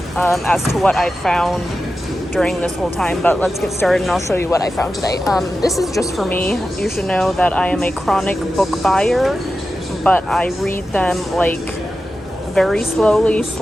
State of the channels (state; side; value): normal; both; correlation 0.92